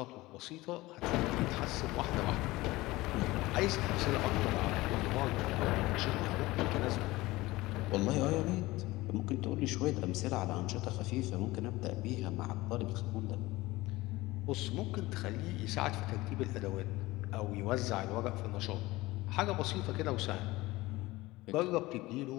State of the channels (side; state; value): right; quieter; 19.6 dB